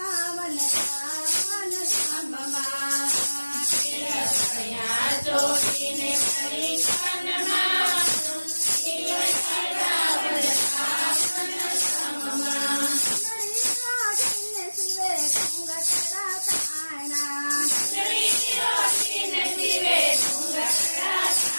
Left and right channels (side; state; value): both; inverted; correlation -1.00